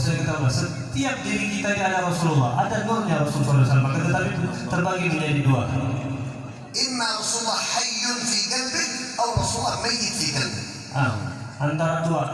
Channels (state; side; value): identical; both; correlation 1.00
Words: katakan setiap diri kita ini ada Rasulullah, ada nurnya Rasulullah SAW, tetapi terbagi menjadi dua. Imma Rasulullah hayyun fi qalbik atau Rasulullah mayyit fi qalbik. Antara dua,